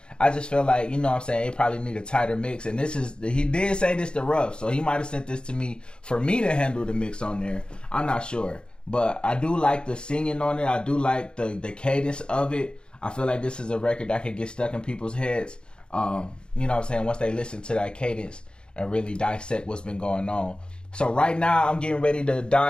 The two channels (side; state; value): right; late; 0.051 ms